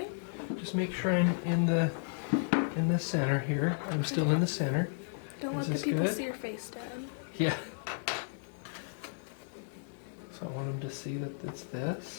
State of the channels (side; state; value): right; silent; 55 dB below the other